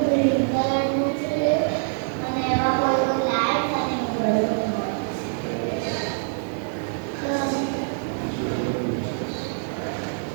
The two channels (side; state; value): left; silent; digital silence